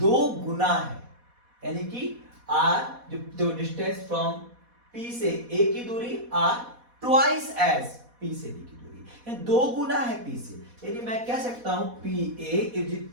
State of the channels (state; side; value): late; left; 4.1 ms